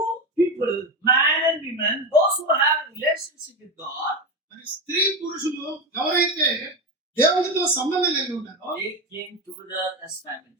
people, man and woman, those who have relationship with God, మరి స్త్రీ పురుషులు ఎవరైతే దేవునితో సంబంధం కలిగి ఉన్నారో they came together as family.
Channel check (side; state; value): both; normal; correlation 0.16